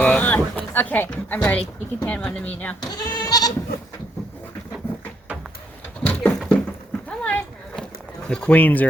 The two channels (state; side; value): normal; both; correlation 0.74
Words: Okay, I'm ready. You can hand one to me now. Come on. The queens